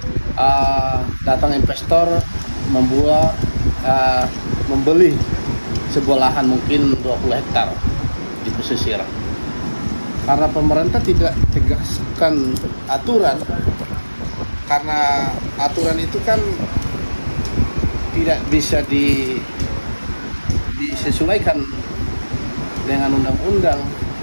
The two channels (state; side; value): inverted; both; correlation -1.00